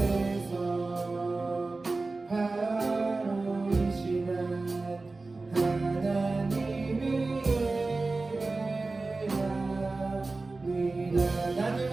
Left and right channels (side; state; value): left; quieter; 3.5 dB